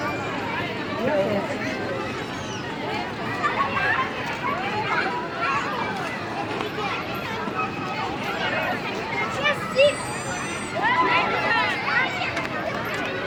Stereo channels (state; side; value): identical; both; correlation 1.00